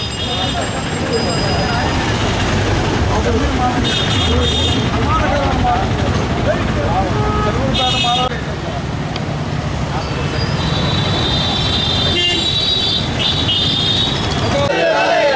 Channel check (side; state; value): both; identical; correlation 1.00